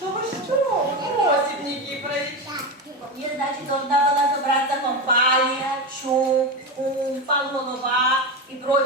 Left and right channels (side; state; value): both; normal; correlation 0.17